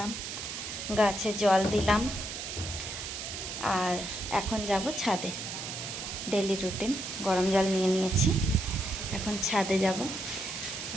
গাছে জল দিলাম, আর এখন যাব ছাদে। ডেলি রুটিন, গরম জল নিয়ে নিয়েছি। এখন ছাদে যাব,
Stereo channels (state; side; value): noise; right; hiss, 6 dB below the sound